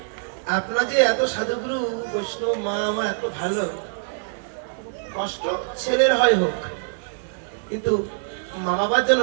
আপনার যে এত সাধুগুরু বৈষ্ণব মা আমার এত ভালো, কষ্ট ছেলের হয় হোক, কিন্তু মা বাবার জন্য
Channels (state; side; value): silent; left; digital silence